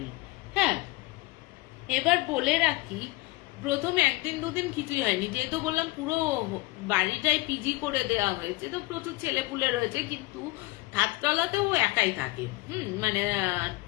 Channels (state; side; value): quieter; right; 21.5 dB